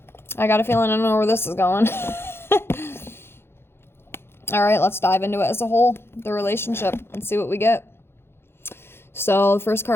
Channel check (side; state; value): right; late; 0.11 ms